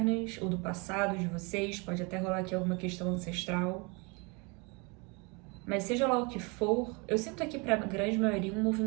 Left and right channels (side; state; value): left; quieter; 29.9 dB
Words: ou do passado de vocês. Pode até rolar aqui alguma questão ancestral. Mas seja lá o que for, eu sinto aqui para a grande maioria um